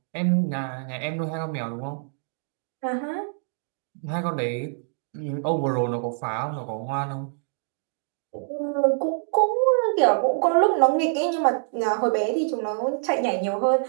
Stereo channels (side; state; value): left; silent; digital silence